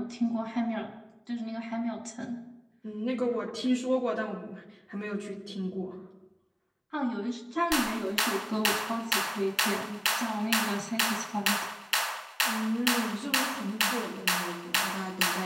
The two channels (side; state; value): both; identical; correlation 1.00